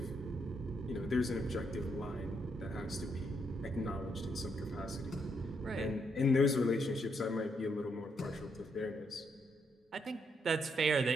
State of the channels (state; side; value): normal; both; correlation 0.77